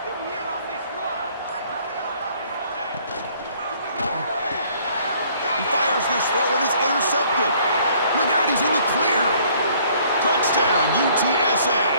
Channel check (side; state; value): both; inverted; correlation -0.60